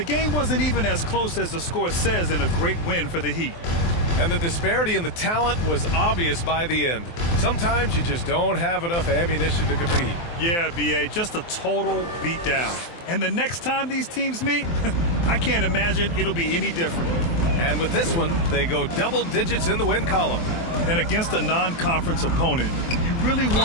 game wasn't even as close as the score says in a great win for the Heat. And the disparity in the talent was obvious by the end. Sometimes you just don't have enough ammunition to compete. Yeah, B.A., just a total beatdown. And the next time these teams meet, I can't imagine it'll be any different. And with this one, they go double digits in the win column. And against a non-conference opponent, you really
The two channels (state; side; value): late; right; 23 ms